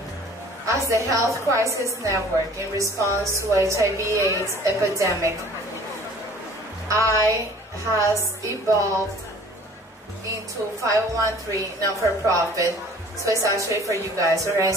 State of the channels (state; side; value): normal; both; correlation 0.50